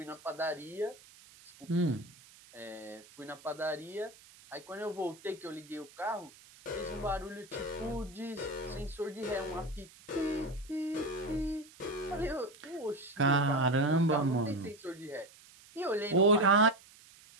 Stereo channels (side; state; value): right; noise; hiss, 23 dB below the sound